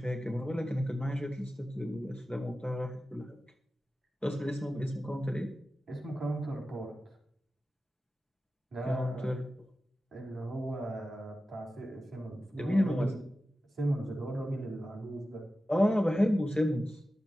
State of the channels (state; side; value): normal; both; correlation 0.94